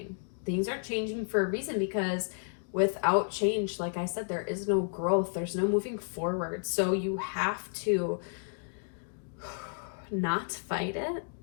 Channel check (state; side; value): silent; right; digital silence